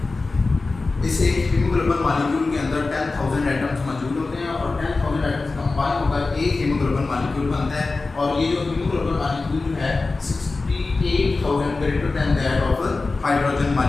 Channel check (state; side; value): quieter; right; 3.7 dB